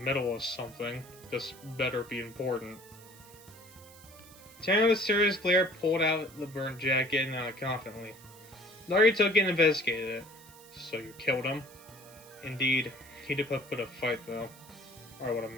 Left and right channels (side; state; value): right; noise; hiss, 21 dB below the sound